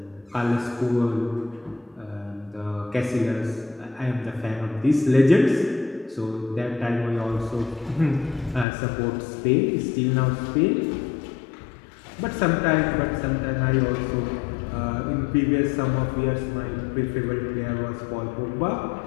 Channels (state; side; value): drops out; right; at 8.7 s